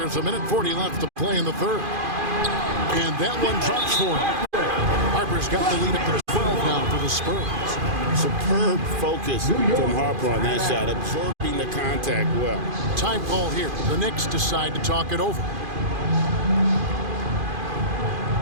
a minute 40 left to play in the third. And that one drops for him. Harper's got the lead up to 12 now for the Spurs. Superb focus from Harper on that shot, absorbing the contact well. Time call here. The Knicks decide to talk it over.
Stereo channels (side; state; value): left; late; 2.5 ms